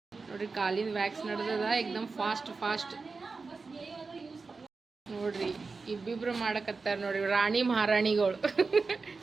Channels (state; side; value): quieter; left; 4.3 dB